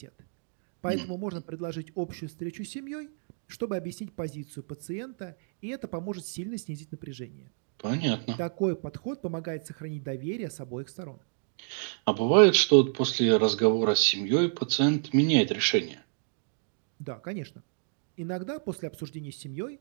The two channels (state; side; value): silent; left; digital silence